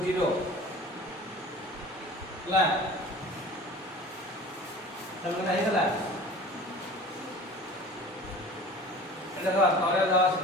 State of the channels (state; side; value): normal; both; correlation 0.41